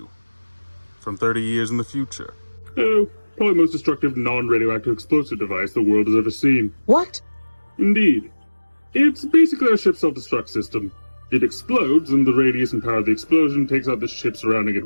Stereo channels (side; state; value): both; inverted; correlation -1.00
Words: From 30 years in the future. Oh, probably the most destructive non-radioactive explosive device the world has ever seen. What? Indeed. It's basically our ship's self-destruct system. It explodes, and the radius and power of the explosion takes out the ship surrounding it